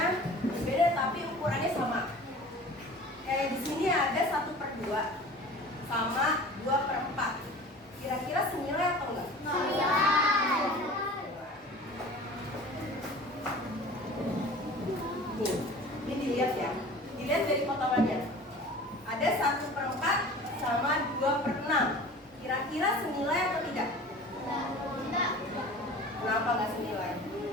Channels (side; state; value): both; normal; correlation 0.41